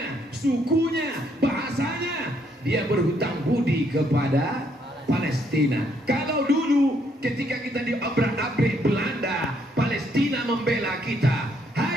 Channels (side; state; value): both; normal; correlation 0.71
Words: sukunya, bahasanya, dia berhutang budi kepada Palestina. Kalau dulu ketika kita diobrak-abrik Belanda, Palestina membela kita.